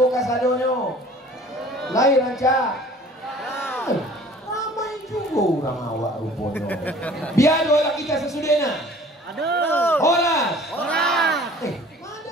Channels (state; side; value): normal; both; correlation 0.49